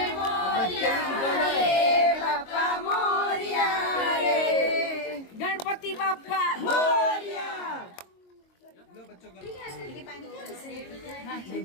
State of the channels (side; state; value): right; late; 22 ms